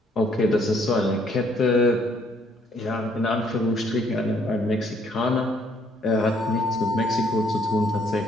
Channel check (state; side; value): normal; both; correlation 0.66